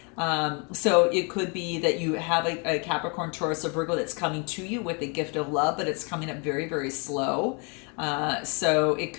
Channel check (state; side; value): quieter; right; 34.0 dB